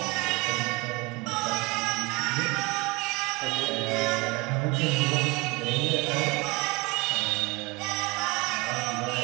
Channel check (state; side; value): quieter; left; 24.9 dB